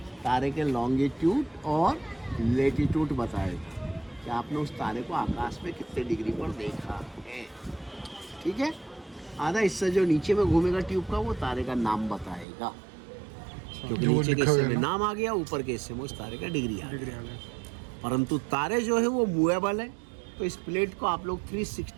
तारे के लॉन्गिट्यूड और लेटीट्यूड बताएगा कि आपने उस तारे को आकाश में कितने डिग्री पर देखा है। ठीक है। आधा हिस्सा जो नीचे में घूमेगा ट्यूब का, वो तारे का नाम बताएगा, क्योंकि नीचे के हिस्से में नाम आ गया, ऊपर के हिस्से में उस तारे का डिग्री आ गया। परंतु तारे जो है वो मूवेबल है, तो इस प्लेट को आप लोग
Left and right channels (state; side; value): drops out; left; at 12.5 s